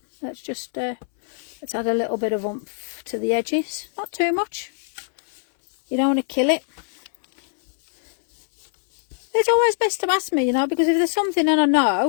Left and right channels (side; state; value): right; silent; 64 dB below the other